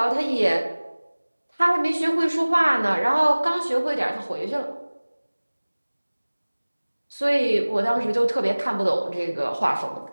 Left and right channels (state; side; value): inverted; both; correlation -1.00